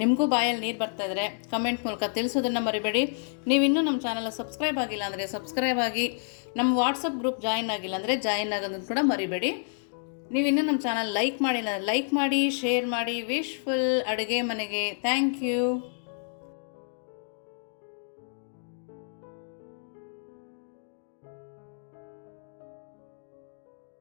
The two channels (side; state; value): right; silent; digital silence